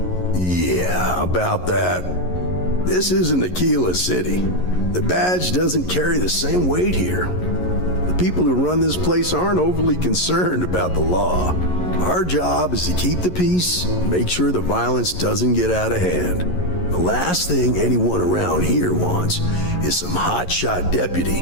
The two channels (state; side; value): late; right; 11 ms